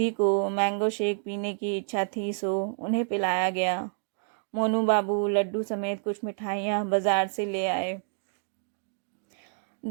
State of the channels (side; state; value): left; silent; 59 dB below the other